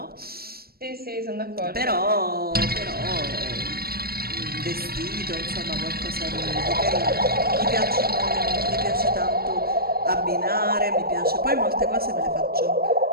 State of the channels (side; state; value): left; late; 0.44 ms